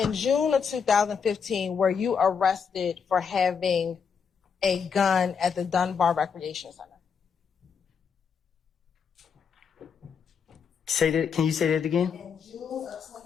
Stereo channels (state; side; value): quieter; right; 6.4 dB